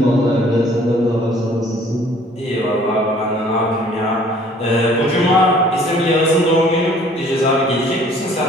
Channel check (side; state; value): both; normal; correlation 0.56